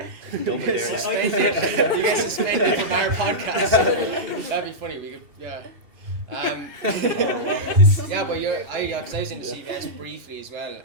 you. Don't dare you. You get suspended from our podcast. That'd be funny. We could, yeah. Yeah, but I was in the CBS briefly as well,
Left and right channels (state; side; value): late; left; 2.7 ms